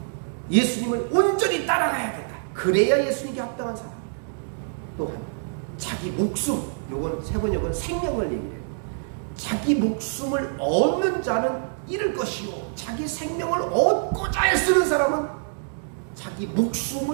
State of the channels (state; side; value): silent; left; digital silence